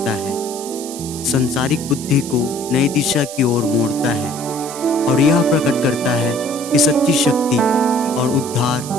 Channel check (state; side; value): noise; right; hiss, 11 dB below the sound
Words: है, संसारिक बुद्धि को नई दिशा की ओर मोड़ता है और यह प्रकट करता है कि सच्ची शक्ति और उद्धार